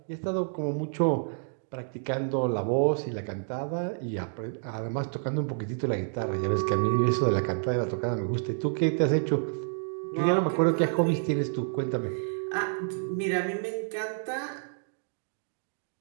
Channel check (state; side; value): silent; left; digital silence